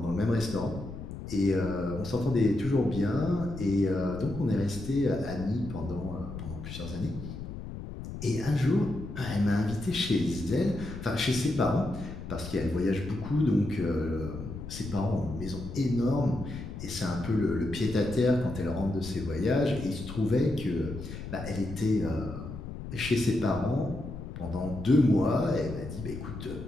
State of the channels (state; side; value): noise; left; rumble, 9 dB below the sound